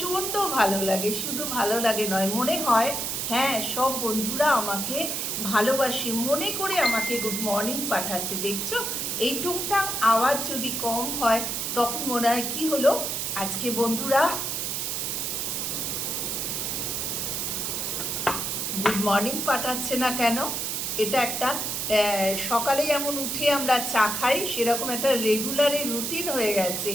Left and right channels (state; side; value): noise; right; hiss, 2 dB below the sound